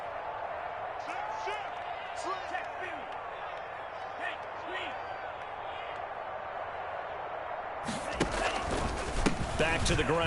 Back to the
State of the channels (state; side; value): identical; both; correlation 1.00